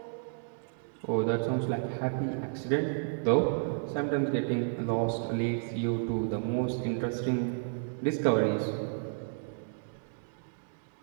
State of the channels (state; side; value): silent; left; digital silence